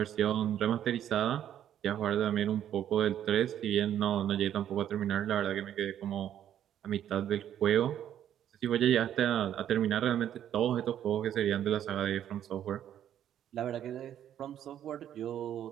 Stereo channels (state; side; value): quieter; left; 10.5 dB